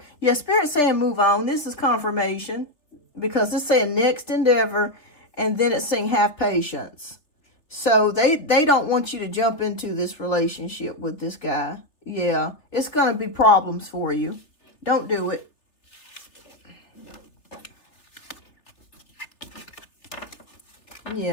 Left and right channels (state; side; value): late; right; 3.2 ms